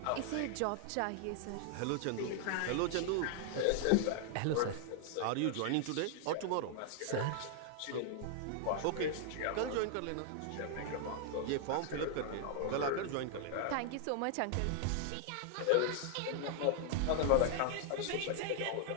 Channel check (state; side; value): different; both; correlation 0.00